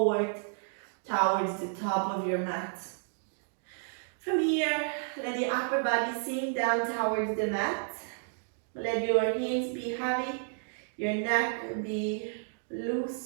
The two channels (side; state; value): left; silent; digital silence